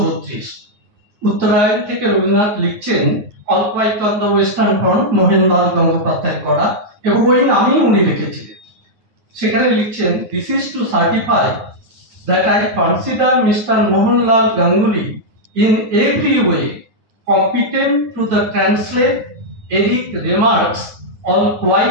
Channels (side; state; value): left; late; 9.5 ms